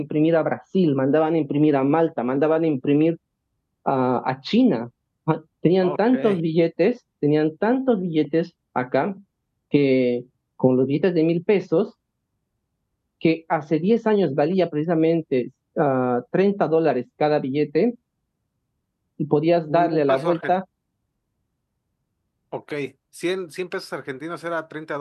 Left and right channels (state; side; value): identical; both; correlation 1.00